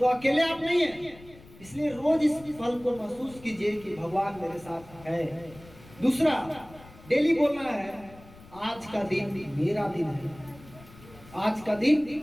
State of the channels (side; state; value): left; noise; rumble, 21 dB below the sound